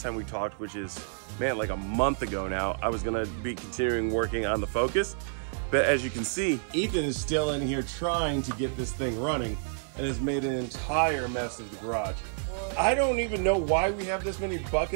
time we talked, which is, man, like a month ago now, I was gonna be continuing working on the Focus. But as you can see, Ethan is still in here trying to get this thing running and has made an entire mess of the garage. I don't even know why we have this many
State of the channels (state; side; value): silent; left; digital silence